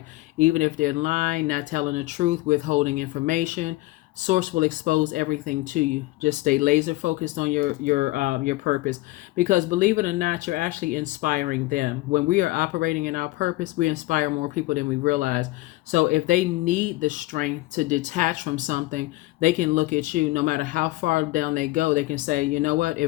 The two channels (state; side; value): quieter; right; 19.4 dB